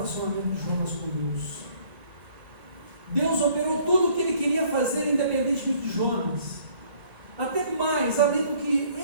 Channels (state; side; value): late; left; 1.1 ms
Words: de Jonas com Deus. Deus operou tudo o que ele queria fazer, independentemente de Jonas, até mais, além do que